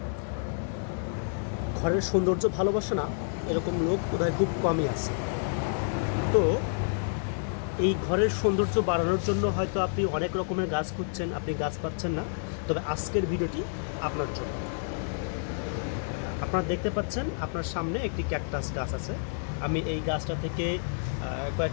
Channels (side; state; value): right; silent; digital silence